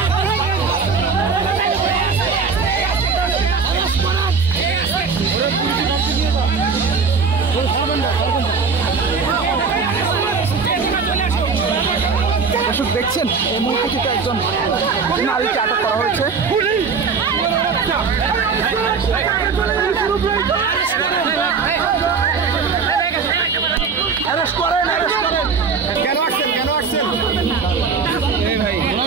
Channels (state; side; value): quieter; left; 5.4 dB